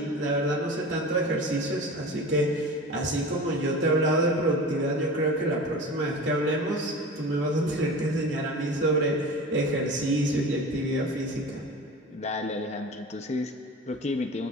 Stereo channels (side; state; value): both; normal; correlation 0.34